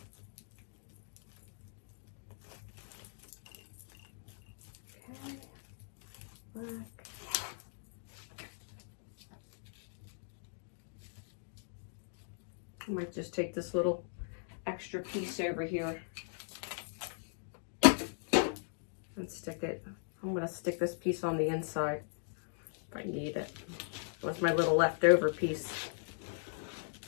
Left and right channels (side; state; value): right; silent; digital silence